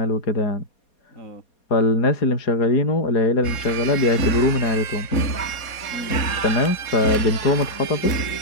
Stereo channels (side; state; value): right; late; 4.2 ms